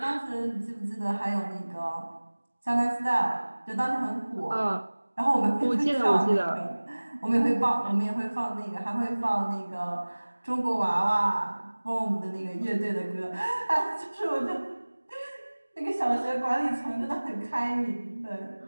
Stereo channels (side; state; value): both; inverted; correlation -1.00